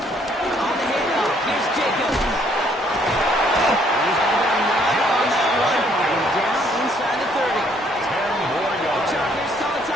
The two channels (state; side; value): normal; both; correlation 0.65